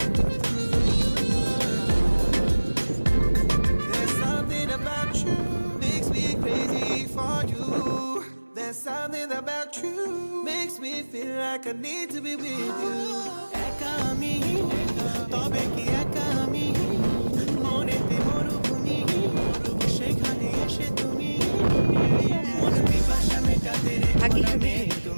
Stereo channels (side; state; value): both; inverted; correlation -1.00